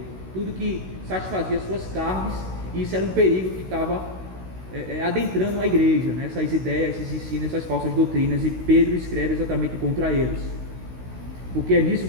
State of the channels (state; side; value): late; left; 16 ms